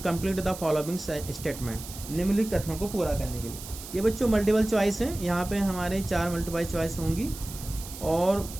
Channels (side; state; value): right; noise; hiss, 13 dB below the sound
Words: the following statement, निम्नलिखित कथनों को पूरा करने के लिए। ये बच्चों मल्टीपल चॉइस है, यहाँ पे हमारे 4 मल्टीपल चॉइस होंगी और